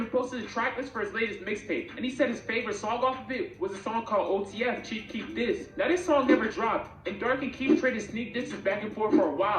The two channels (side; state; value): both; identical; correlation 1.00